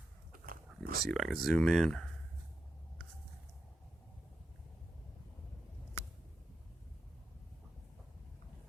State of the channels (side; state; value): both; normal; correlation 0.88